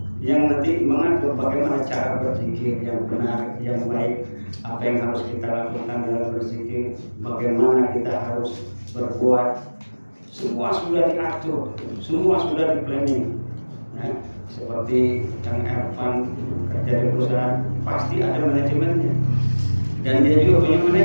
yang nanti mengatur bagaimana cara berzikir yang benar, yang baik, apa yang harus kita lakukan dalam berzikir, bagaimana kita harus berbuat. Semua sudah diatur, semua sudah di planning. Nah, seperti Kang Ervan kerja di perusahaan, pasti ada manajemennya, dan dia juga punya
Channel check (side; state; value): both; inverted; correlation -1.00